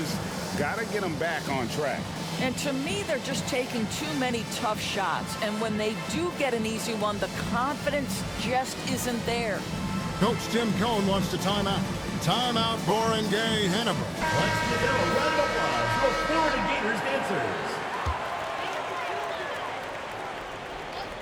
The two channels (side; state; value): both; identical; correlation 1.00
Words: got to get them back on track. And to me, they're just taking too many tough shots. And when they do get an easy one, the confidence just isn't there. Coach Tim Cohn wants to timeout. Timeout, Barangay, Ginebra. Let's give them a round of applause for Florida Gators dancers.